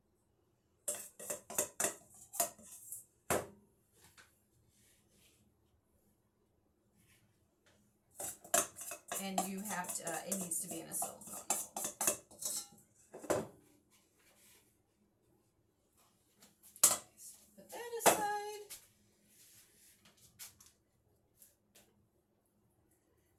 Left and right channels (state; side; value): identical; both; correlation 1.00